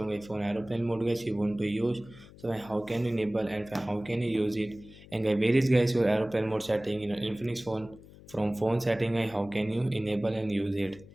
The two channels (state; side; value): noise; left; hum, 20 dB below the sound